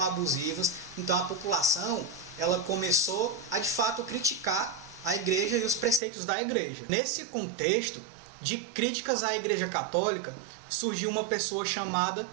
abusivas, então a população ela começou a de fato criticar a igreja e os preceitos da igreja. Nesse contexto de críticas à Igreja Católica, surgiu uma pessoa chamada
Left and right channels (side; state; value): left; drops out; at 6.0 s